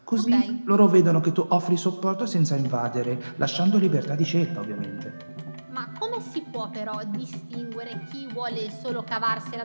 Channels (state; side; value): inverted; both; correlation -1.00